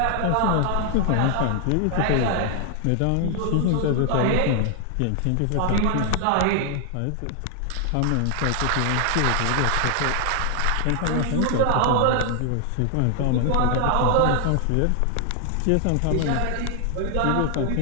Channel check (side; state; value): both; different; correlation 0.00